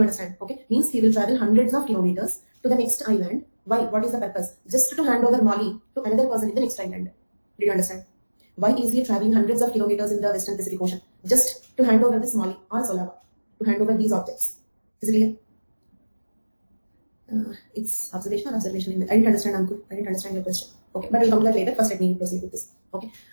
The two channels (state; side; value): inverted; both; correlation -1.00